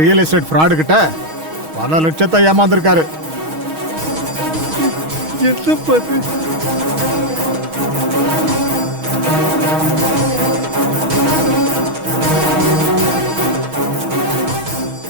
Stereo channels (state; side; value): late; left; 6.3 ms